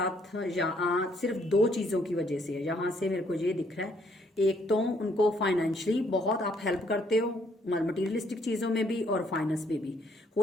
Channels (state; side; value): normal; both; correlation 0.68